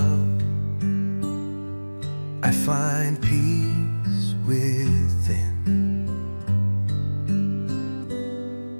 I find peace within.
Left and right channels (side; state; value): both; inverted; correlation -1.00